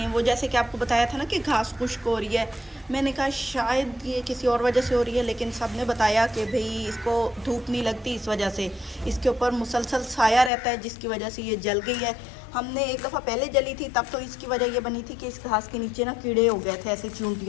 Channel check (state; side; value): drops out; right; at 10.5 s